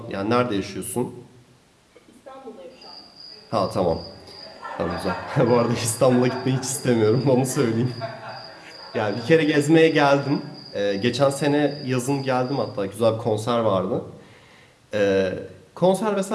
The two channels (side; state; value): both; identical; correlation 1.00